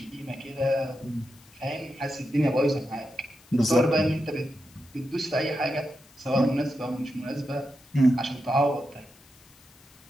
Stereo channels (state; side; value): noise; left; hiss, 27 dB below the sound